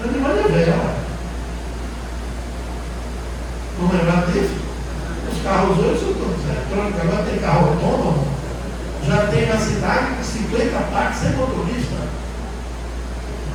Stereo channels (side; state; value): both; identical; correlation 1.00